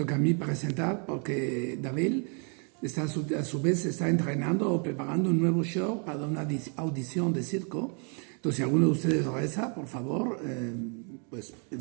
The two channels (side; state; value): left; quieter; 39.8 dB